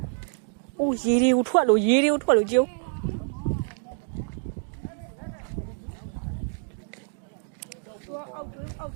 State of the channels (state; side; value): silent; left; 60 dB below the other